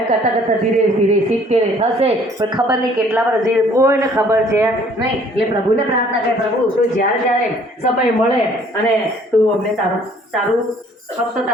કરતાં કરતાં ધીરે ધીરે 70 થશે, પણ ખબર નહીં કેટલા વર્ષ જે કોઈને ખબર છે નહીં. એટલે પ્રભુને પ્રાર્થના કરે, પ્રભુ તું જ્યારે જ્યારે સમય મળે અને તું અમને તારું ફક્ત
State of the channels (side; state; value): both; normal; correlation 0.58